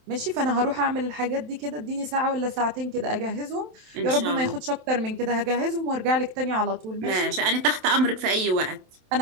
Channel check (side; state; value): left; late; 27 ms